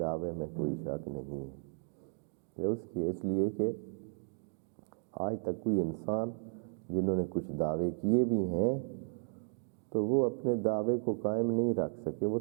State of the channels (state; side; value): silent; left; 55 dB below the other